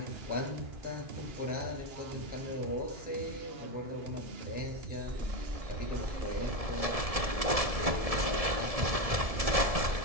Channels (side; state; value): left; late; 1.7 ms